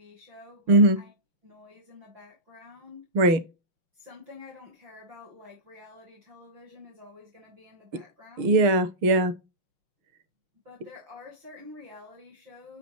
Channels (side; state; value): left; late; 6.4 ms